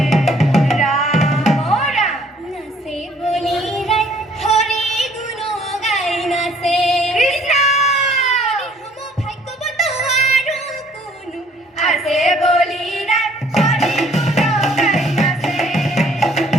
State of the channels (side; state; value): both; normal; correlation 0.60